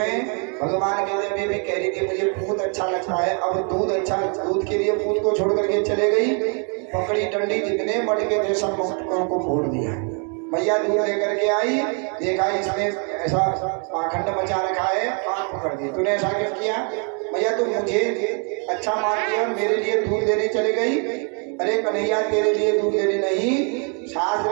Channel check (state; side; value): quieter; left; 38.7 dB